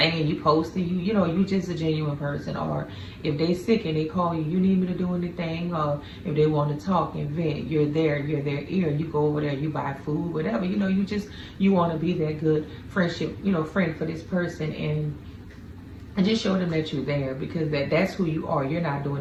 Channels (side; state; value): both; identical; correlation 1.00